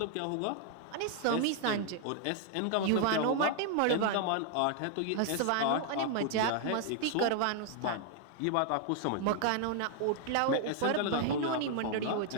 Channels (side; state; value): both; different; correlation 0.00